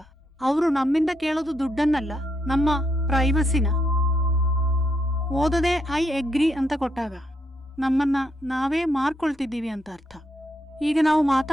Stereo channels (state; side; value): normal; both; correlation 0.78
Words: ಅವರು ನಮ್ಮಿಂದ ಕೇಳೋದು ದುಡ್ಡನ್ನಲ್ಲ, ನಮ್ಮ ಪ್ರೈವಸಿನ. ಓದದೆ ಐ ಅಗ್ರಿ ಅಂತ ಕೊಟ್ಟಾಗ ನಮ್ಮನ್ನ ನಾವೇ ಮಾರ್ಕೊಳ್ತಿದ್ದೀವಿ ಅಂತ ಅರ್ಥ. ಈಗ ನಾವು